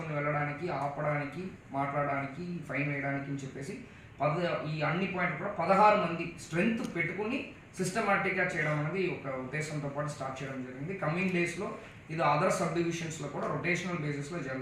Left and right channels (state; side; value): identical; both; correlation 1.00